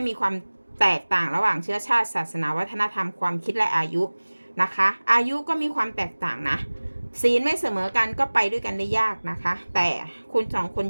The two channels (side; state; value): both; inverted; correlation -1.00